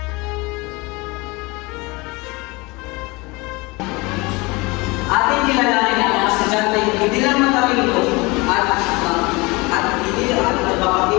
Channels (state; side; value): quieter; right; 24.9 dB